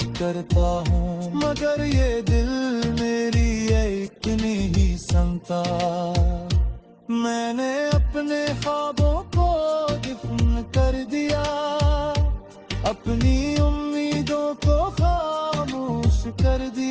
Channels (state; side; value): identical; both; correlation 1.00